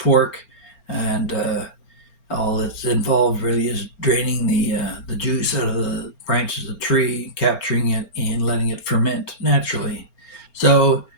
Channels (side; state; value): right; late; 4.4 ms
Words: and all that's involved really is draining the juice out of the branches of the tree, capturing it, and letting it ferment naturally. So